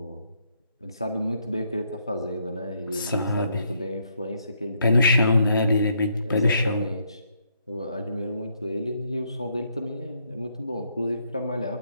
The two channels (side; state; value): both; inverted; correlation -0.73